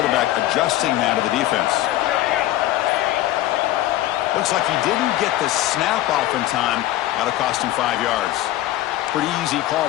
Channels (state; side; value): quieter; right; 14.8 dB